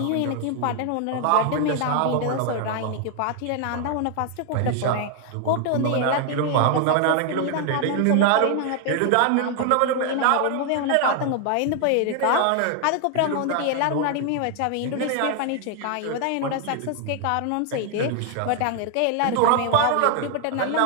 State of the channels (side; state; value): both; different; correlation 0.00